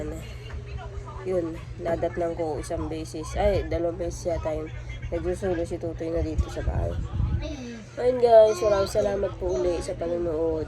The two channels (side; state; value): both; identical; correlation 1.00